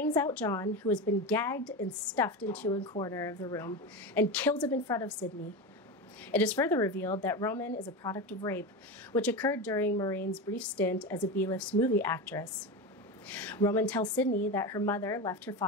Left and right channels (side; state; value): both; normal; correlation 0.20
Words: out John, who has been gagged and stuffed into a corner of the room, and kills him in front of Sidney. It is further revealed that Roman is a product of rape, which occurred during Maureen's brief stint as a B-list movie actress. Roman tells Sidney that her mother left her